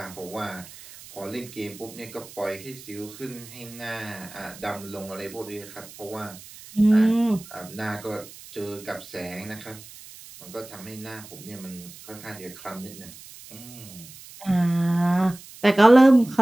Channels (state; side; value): noise; right; hiss, 18 dB below the sound